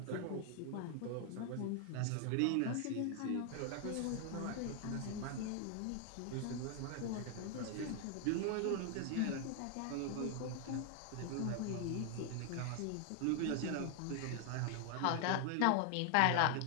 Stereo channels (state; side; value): different; both; correlation 0.00